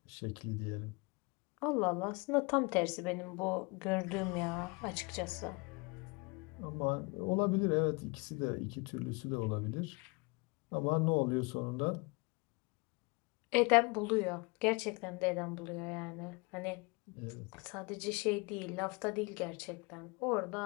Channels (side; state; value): right; quieter; 28.9 dB